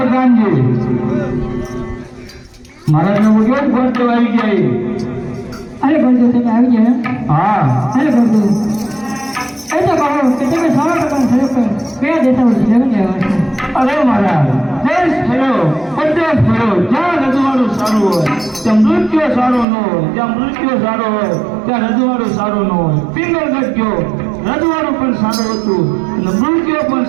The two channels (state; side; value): drops out; left; at 19.7 s